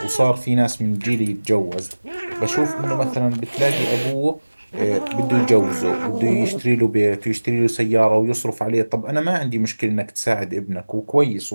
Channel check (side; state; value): both; inverted; correlation -1.00